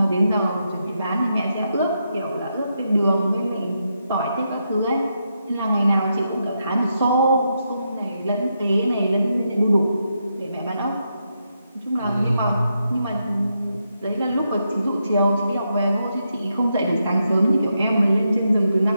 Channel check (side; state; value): both; inverted; correlation -0.83